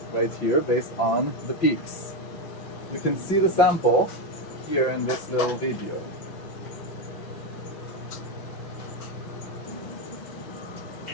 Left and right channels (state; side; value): late; right; 6.0 ms